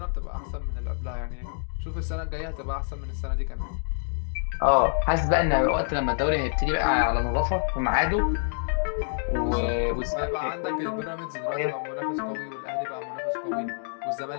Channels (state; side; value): silent; right; digital silence